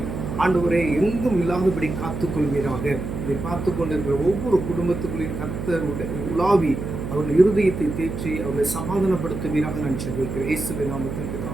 ஆண்டவரே எங்கும் இல்லாதபடி காத்துக்கொள்வீராக. இதை பார்த்து கொண்டிருக்கிற ஒவ்வொரு குடும்பத்துக்குள்ளையும் கர்த்தர் உலாவி அவர்கள் இருதயத்தை தேற்றி அவர்களை சமாதானப்படுத்துவீராக நான் ஜெபிக்கிறேன். இயேசுவின் நாமத்தில்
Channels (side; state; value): right; noise; hum, 6 dB below the sound